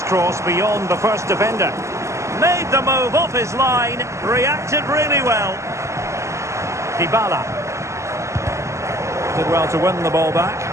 cross beyond the first defender. Made the move off his line, reacted really well. Dybala. Did well to win the ball back.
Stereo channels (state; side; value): late; left; 0.14 ms